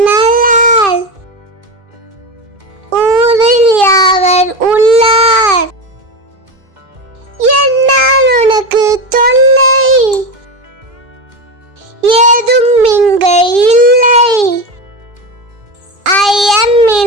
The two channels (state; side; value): late; left; 2.5 ms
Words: நல்லால் ஊரில் யாவர் உள்ளார். என்னால் உனக்கு தொல்லை ஏதும் இங்கு இல்லை.